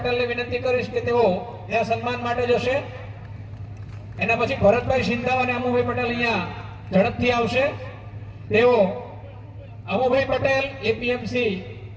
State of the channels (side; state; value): both; identical; correlation 1.00